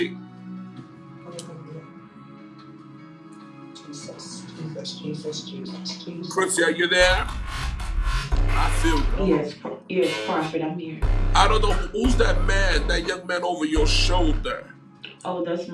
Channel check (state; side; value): identical; both; correlation 1.00